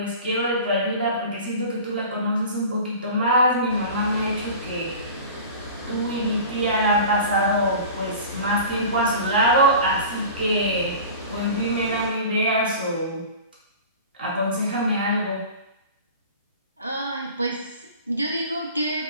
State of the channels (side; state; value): both; inverted; correlation -0.38